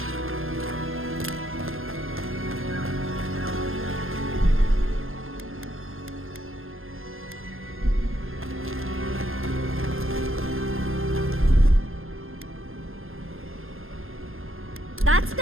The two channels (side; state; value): left; late; 0.60 ms